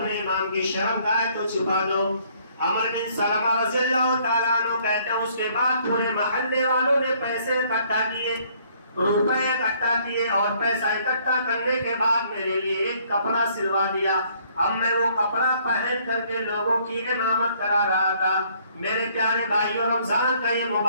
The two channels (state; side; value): inverted; both; correlation -0.63